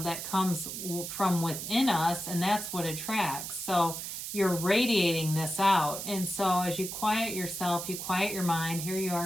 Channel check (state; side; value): noise; right; hiss, 6 dB below the sound